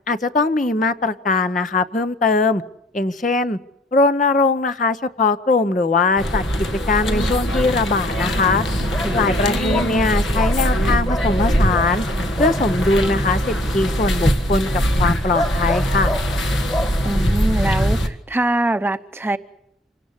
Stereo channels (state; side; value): normal; both; correlation 0.57